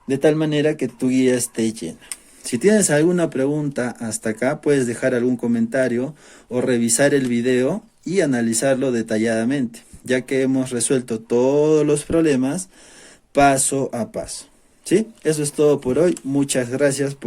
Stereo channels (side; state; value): both; identical; correlation 1.00